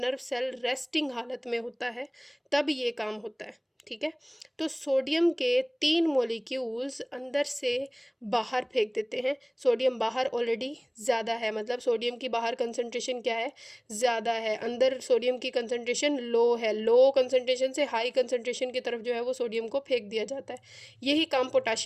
सेल रेस्टिंग हालत में होता है, तब ये काम होता है, ठीक है? तो सोडियम के 3 मॉलिक्यूल्स अंदर से बाहर फेंक देते हैं। सोडियम बाहर ऑलरेडी ज़्यादा है, मतलब सोडियम की बाहर कंसंट्रेशन क्या है, ज़्यादा है। अंदर सोडियम की कंसंट्रेशन लो है, लो कंसंट्रेशन से हाई कंसंट्रेशन की तरफ जो है वो सोडियम को फेंक दिया जाता है। यही काम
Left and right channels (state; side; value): identical; both; correlation 1.00